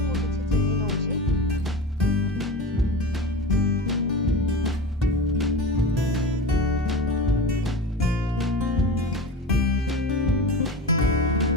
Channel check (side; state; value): both; normal; correlation 0.29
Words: किछि चीनी नउछि।